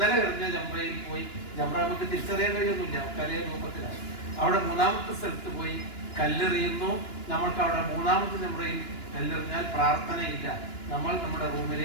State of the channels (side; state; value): right; late; 2.9 ms